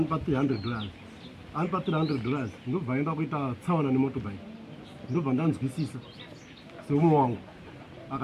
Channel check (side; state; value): both; identical; correlation 1.00